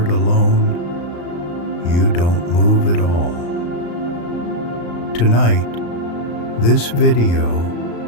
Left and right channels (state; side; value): late; right; 35 ms